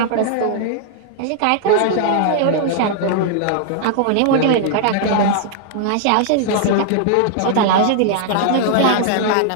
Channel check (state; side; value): different; both; correlation 0.00